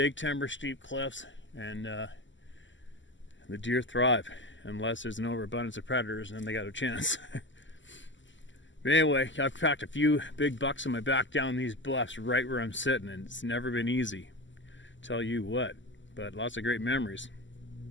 timber, steep cliffs, and the deer thrive, unless there's an overabundance of predators, and then they got a chance. But anyway, I've packed a few big bucks on my back down these bluffs right where I'm sitting, and it's never been easy. Tell you what, but lots of great memories.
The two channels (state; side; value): late; right; 0.54 ms